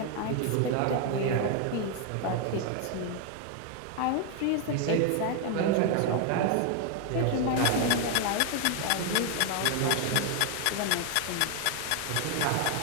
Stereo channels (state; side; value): different; both; correlation 0.01